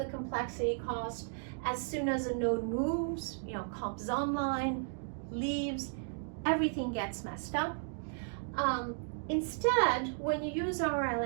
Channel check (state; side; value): silent; left; digital silence